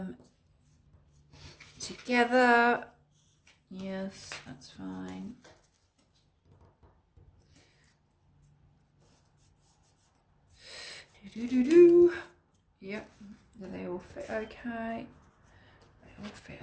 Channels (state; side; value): identical; both; correlation 1.00